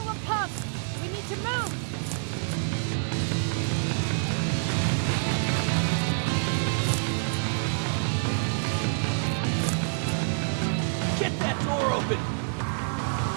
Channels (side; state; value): left; silent; 56 dB below the other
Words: will come! We need to move! Get that door open!